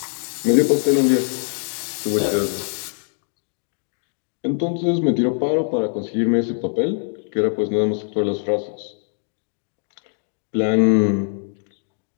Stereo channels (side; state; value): right; silent; digital silence